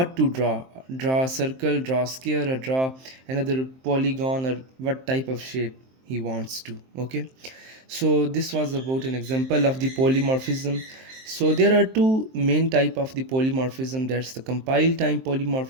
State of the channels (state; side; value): late; left; 23 ms